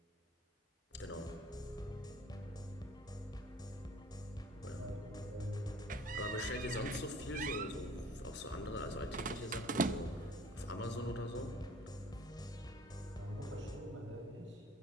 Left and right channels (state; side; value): normal; both; correlation 0.51